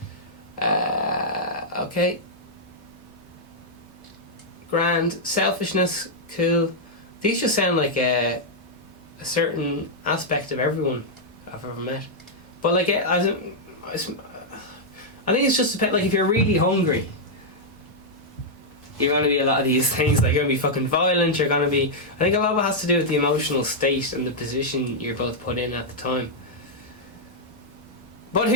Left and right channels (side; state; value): both; normal; correlation -0.05